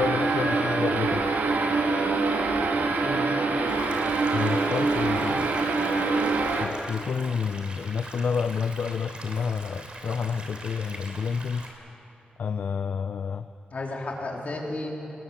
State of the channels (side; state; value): both; normal; correlation 0.77